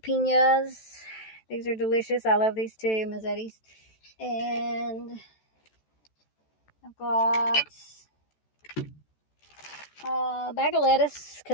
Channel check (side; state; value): right; late; 14 ms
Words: These are delicious. I love these too, Mazzetti's. And I've got a bag of lettuce